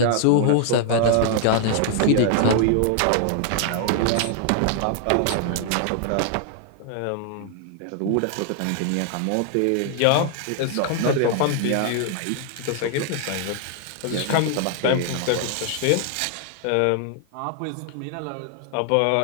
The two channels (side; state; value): both; different; correlation 0.00